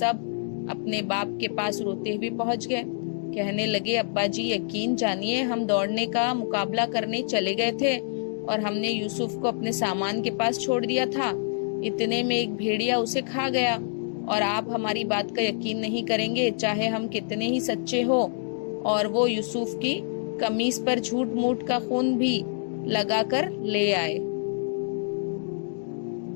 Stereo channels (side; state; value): right; silent; digital silence